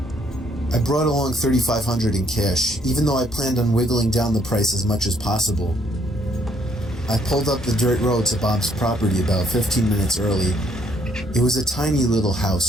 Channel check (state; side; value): normal; both; correlation 0.68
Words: I brought along $3,500 in cash, even though I planned on wiggling down the price as much as possible. I pulled up the dirt road to Bob's property about 15 minutes early. It was a tiny little